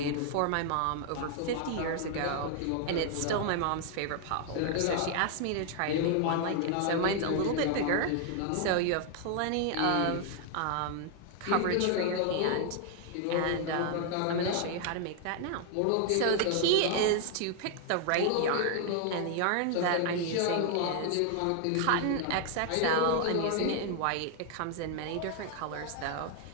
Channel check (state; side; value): different; both; correlation 0.00